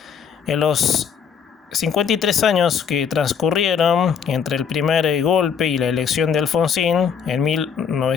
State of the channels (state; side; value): quieter; right; 7.1 dB